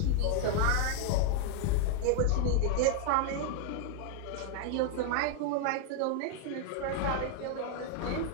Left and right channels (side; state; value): both; different; correlation 0.00